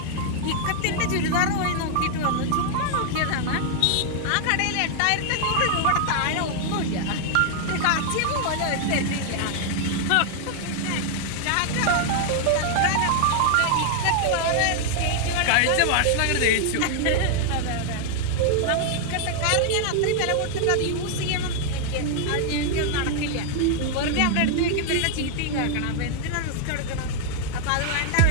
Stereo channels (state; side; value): different; both; correlation 0.00